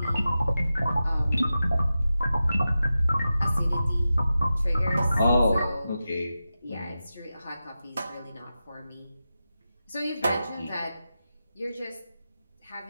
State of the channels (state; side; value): inverted; both; correlation -0.92